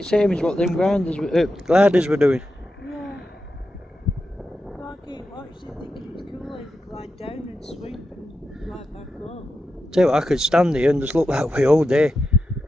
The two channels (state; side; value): normal; both; correlation 0.89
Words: same as what them gliders were doing. Yeah. I keep watching thinking it's cool as you glide down and swoop and glide back up. Tell you what, I could stand here and just look that way all day.